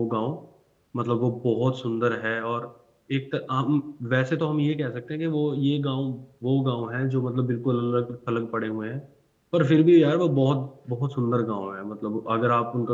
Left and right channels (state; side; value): identical; both; correlation 1.00